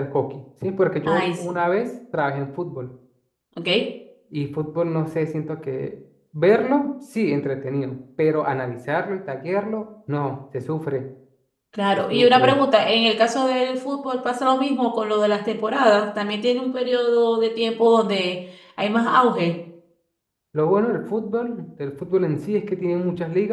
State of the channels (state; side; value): identical; both; correlation 1.00